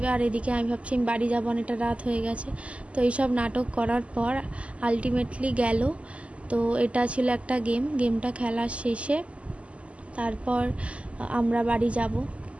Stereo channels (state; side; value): late; left; 0.060 ms